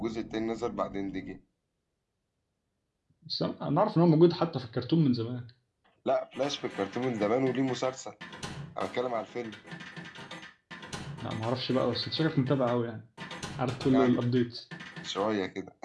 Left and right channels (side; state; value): both; identical; correlation 1.00